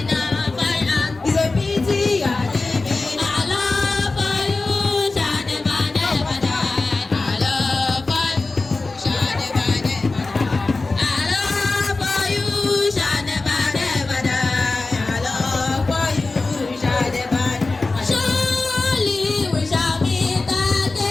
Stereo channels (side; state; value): right; quieter; 3.5 dB